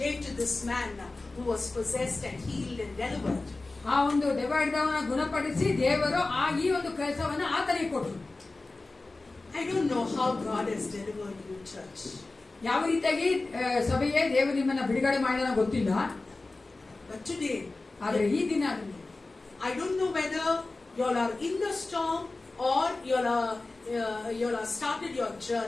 to this man who was possessed and healed and delivered. ಆ ಒಂದು ದೆವ್ವಹಿಡಿದವನ ಗುಣಪಡಿಸಿ ದೇವರು ಈ ಒಂದು ಕೆಲಸವನ್ನ ಆತನಿಗೆ ಕೊಟ್ಟರು. I don't know how God has delivered you, church. ಯಾವ ರೀತಿಯಾಗಿ ಸಭೆಯೇ ದೇವರು ನಿಮ್ಮನ್ನ ಬಿಡುಗಡೆ ಮಾಡಿದ ಗೊತ್ತಿಲ್ಲ. But today, ಆದ್ರೆ ಈ ದಿನ I don't know whether you all are in the storm or you all are started your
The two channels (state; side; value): quieter; right; 3.3 dB